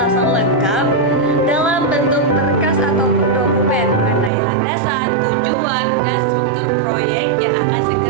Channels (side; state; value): left; drops out; at 4.3 s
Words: lengkap dalam bentuk berkas ataupun dokumen mengenai landasan, tujuan, dan struktur proyek yang akan